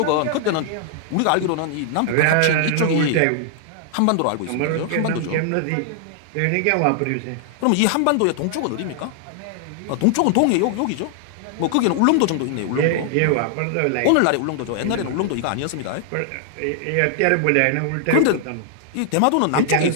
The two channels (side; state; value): both; different; correlation 0.00